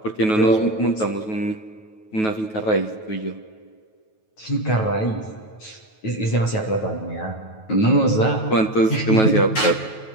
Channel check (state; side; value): late; right; 9.3 ms